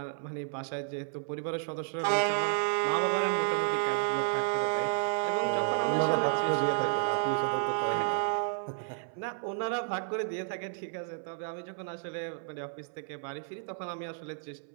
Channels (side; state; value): left; silent; 57 dB below the other